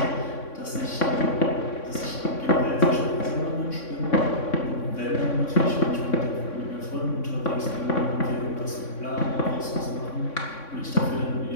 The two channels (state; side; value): late; right; 3.6 ms